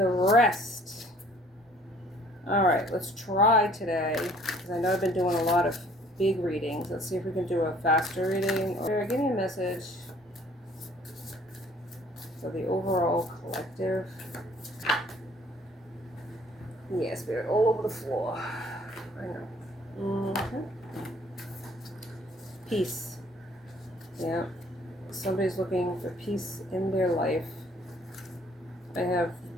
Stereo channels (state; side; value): normal; both; correlation 0.57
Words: rest. Alright, let's try today, because I know I've been doing a lot of big readings. Let's see if we can do a faster reading. Or give me a message for the overall collective. Yeah, spirit all over the floor. I know. Peace. Yeah. Somebody's looking for peace in their life. I have